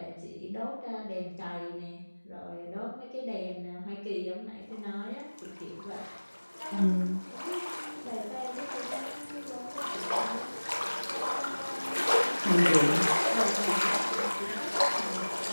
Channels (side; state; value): both; inverted; correlation -1.00